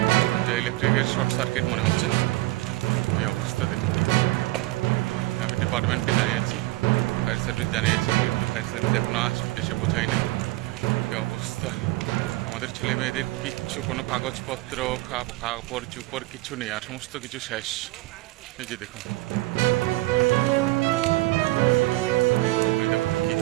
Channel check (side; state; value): left; quieter; 20.2 dB